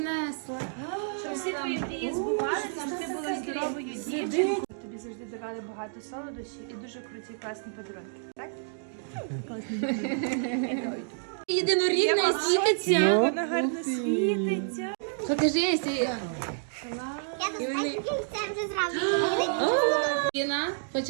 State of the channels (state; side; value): silent; left; digital silence